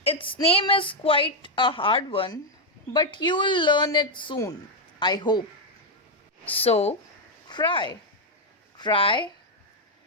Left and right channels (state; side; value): normal; both; correlation 0.02